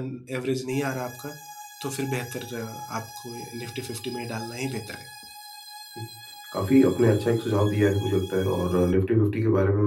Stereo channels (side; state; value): both; identical; correlation 1.00